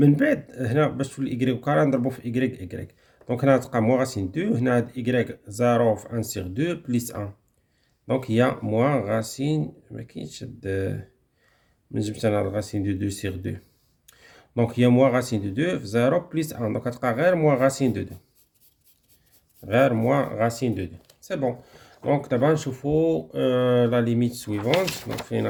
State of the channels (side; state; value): both; identical; correlation 1.00